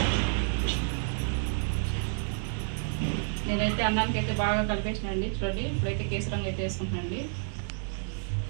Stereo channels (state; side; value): silent; left; 58 dB below the other